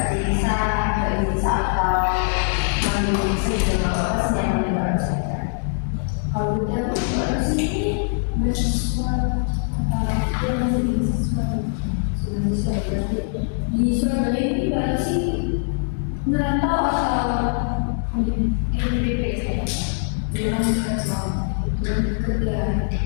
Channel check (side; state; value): right; silent; digital silence